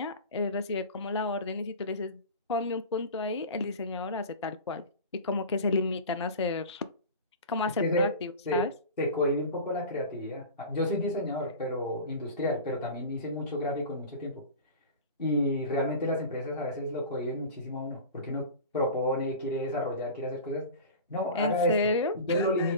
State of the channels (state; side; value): inverted; both; correlation -0.33